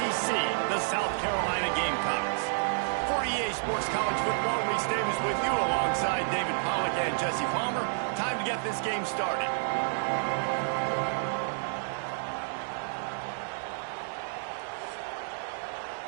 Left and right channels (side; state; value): left; silent; digital silence